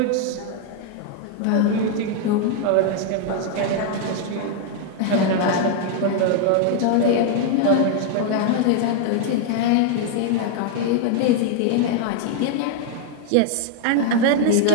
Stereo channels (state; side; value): different; both; correlation 0.00